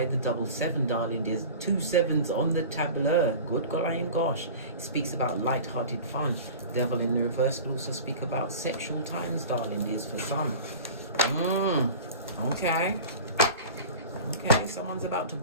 the double 7, darling. There's 2 7s on the tableau. Good golly and gosh. It speaks about light-hearted fun. Devil in the reverse could also speak about sexual times, darling. There's for some. Okay. Okay, someone's about to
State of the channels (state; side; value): inverted; both; correlation -0.37